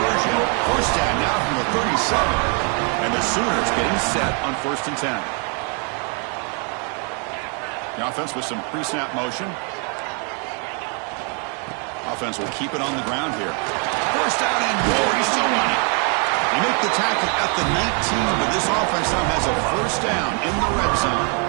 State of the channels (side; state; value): left; quieter; 37.8 dB